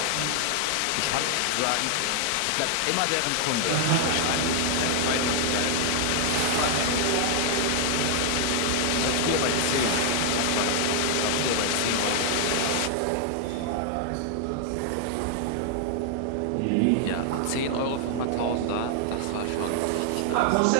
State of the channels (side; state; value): both; different; correlation 0.00